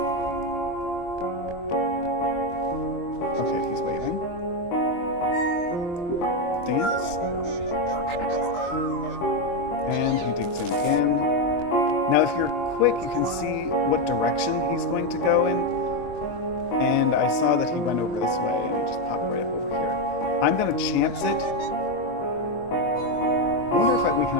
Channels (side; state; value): right; late; 23 ms